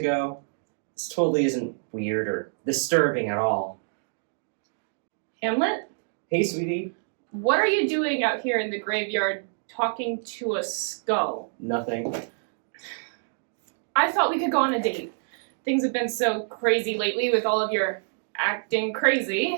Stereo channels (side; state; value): left; silent; digital silence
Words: This totally isn't weird or disturbing at all. Hamlet, Hey, sweetie. what are you doing out here in the graveyard talking to a skull? Nothing. I thought we could go on a date. Things have been so crazy lately with all of your acting